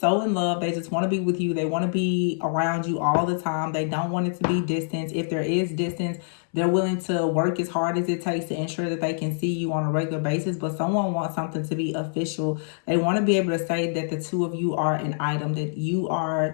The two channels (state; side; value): silent; right; 62 dB below the other